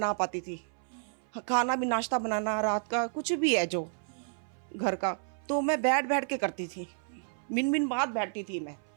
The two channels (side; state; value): left; silent; 57 dB below the other